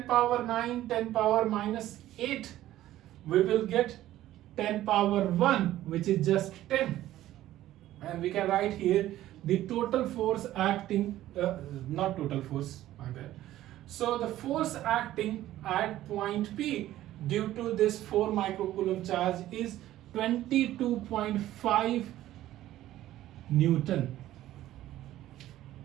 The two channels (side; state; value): left; quieter; 14.1 dB